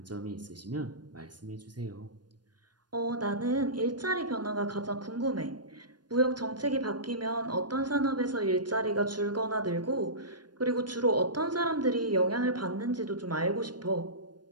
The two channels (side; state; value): left; late; 0.70 ms